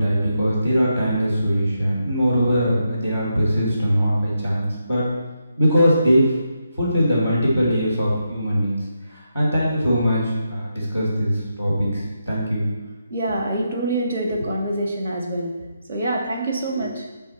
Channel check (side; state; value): both; inverted; correlation -0.84